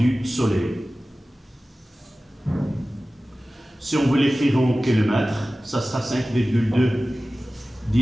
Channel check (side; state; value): both; normal; correlation 0.96